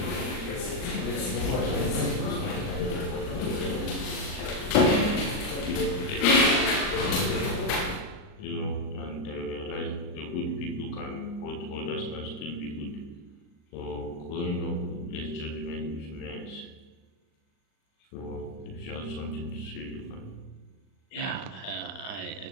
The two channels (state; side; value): late; right; 39 ms